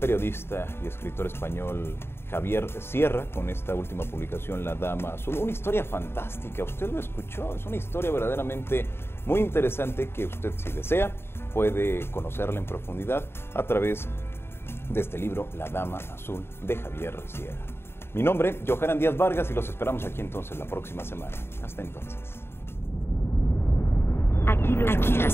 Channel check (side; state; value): right; late; 0.11 ms